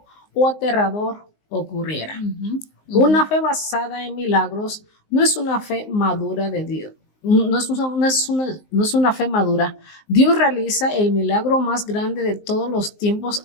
o aterrador ocurriera. Una fe basada en milagros no es una fe madura de Dios. No es una fe madura. Dios realiza el milagro más grande de todos los tiempos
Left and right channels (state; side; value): late; right; 19 ms